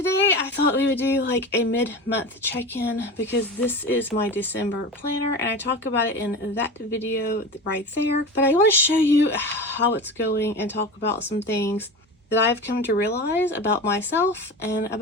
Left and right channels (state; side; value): normal; both; correlation 0.30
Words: I thought we would do like a mid-month check-in because this is my December planner and I talk about it in that video right there. But I want to show you how it's going and talk about some things that I've come to realize about myself and